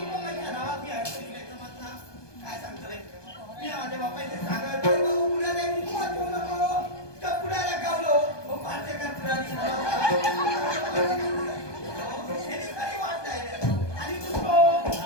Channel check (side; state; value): right; late; 1.2 ms